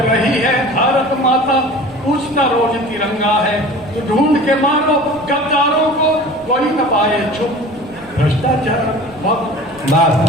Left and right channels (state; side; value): noise; right; rumble, 25 dB below the sound